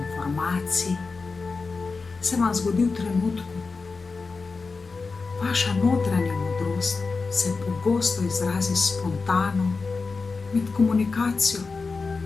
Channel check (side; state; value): right; quieter; 4.3 dB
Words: se vam zgodi v trenutku. Vaša notranja modrost se pogosto izrazi spontano med komunikacijo.